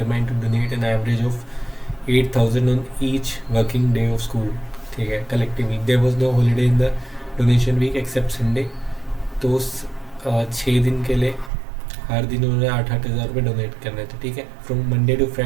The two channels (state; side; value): drops out; left; at 11.5 s